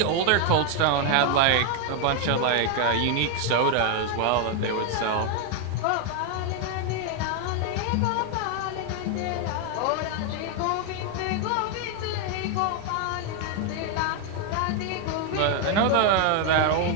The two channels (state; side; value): different; both; correlation 0.01